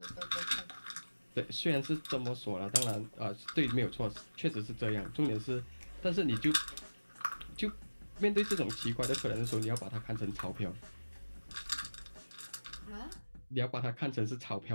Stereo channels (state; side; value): inverted; both; correlation -1.00